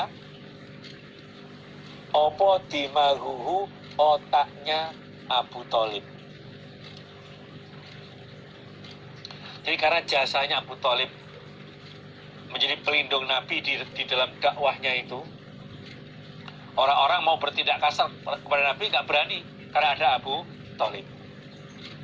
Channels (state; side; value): identical; both; correlation 1.00